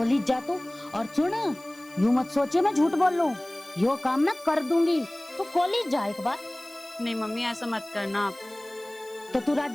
जा तू और सुन, यूं मत सोचिए मैं झूठ बोल लूं, यो काम मैं कर दूंगी। तू कॉलेज जा एक बार। नहीं मम्मी ऐसा मत करना आप। तो तू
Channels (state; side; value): noise; left; hiss, 25 dB below the sound